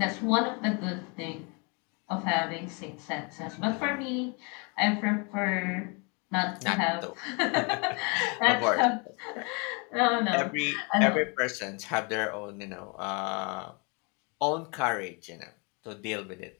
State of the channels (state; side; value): quieter; right; 32.4 dB